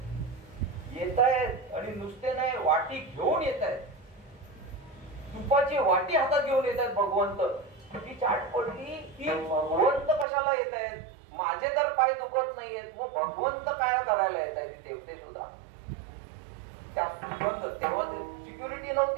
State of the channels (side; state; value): left; drops out; at 10.2 s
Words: येत आहेत आणि नुसते नाही, वाटी घेऊन येत आहेत, तुपाची वाटी हातात घेऊन येत आहेत भगवंत. ती चाट पडली की भगवंत कशाला येत आहेत, माझे तर पाय दुखत नाहीयेत, मग भगवंत काय करायला येत आहेत देवते सुद्धा. त्या सुगंध तेव्हा सिक्युरिटी